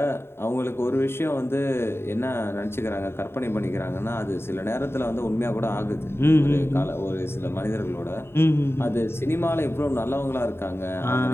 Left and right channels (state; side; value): late; right; 0.11 ms